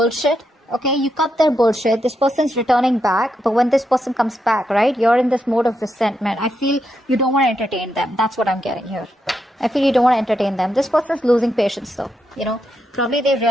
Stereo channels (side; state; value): both; normal; correlation 0.83